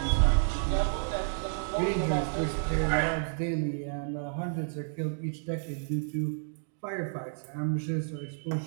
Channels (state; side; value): silent; left; digital silence